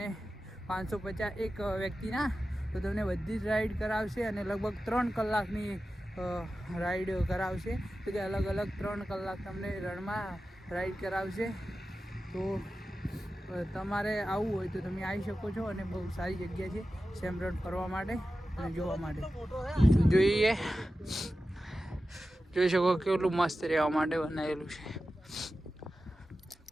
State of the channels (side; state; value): both; normal; correlation 0.93